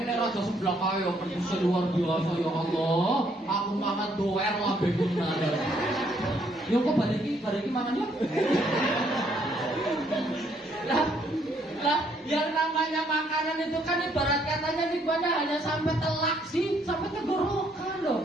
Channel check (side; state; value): both; normal; correlation 0.69